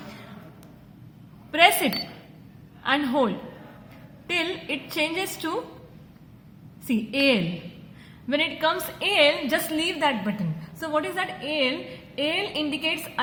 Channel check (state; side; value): identical; both; correlation 1.00